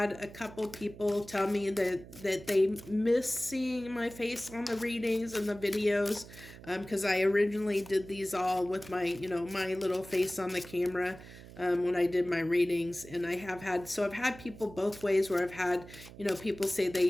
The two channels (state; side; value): noise; right; hum, 17 dB below the sound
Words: a couple people tell me that they miss seeing my face on the readings and the videos, because I originally did these all with my, my little face on the camera. When I did my readings, and I've had people both ways, where I've had, people say